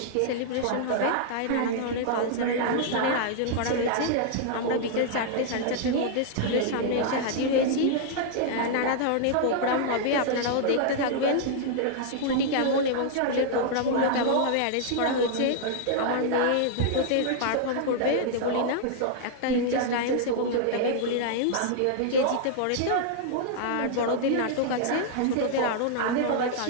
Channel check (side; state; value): both; different; correlation -0.01